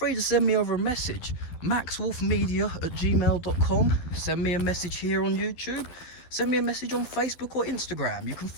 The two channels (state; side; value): late; right; 12 ms